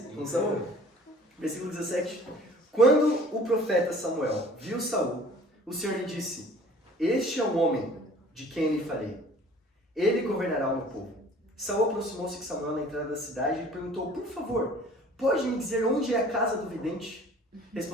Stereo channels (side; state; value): both; normal; correlation 0.49